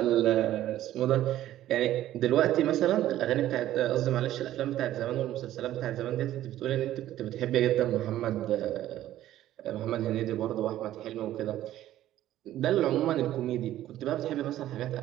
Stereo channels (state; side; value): quieter; left; 13.4 dB